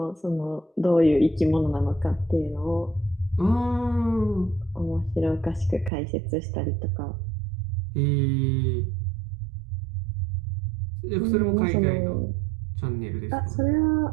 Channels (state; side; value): drops out; left; at 5.9 s